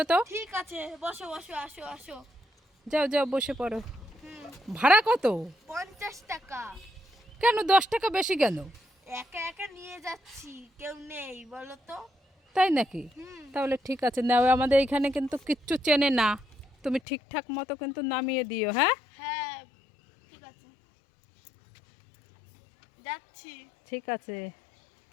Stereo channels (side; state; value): right; drops out; at 17.0 s